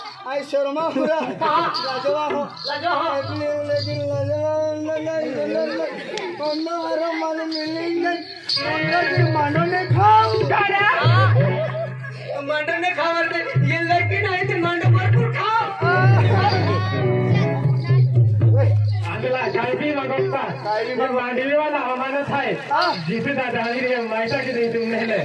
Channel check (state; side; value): identical; both; correlation 1.00